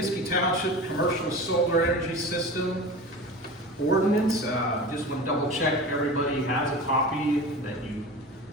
Township Commercial Solar Energy System Ordinance, just want to double check everybody has a copy, that you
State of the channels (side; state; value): both; normal; correlation 0.33